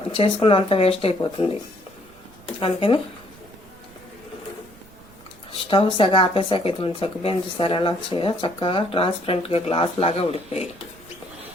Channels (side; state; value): right; noise; rumble, 24 dB below the sound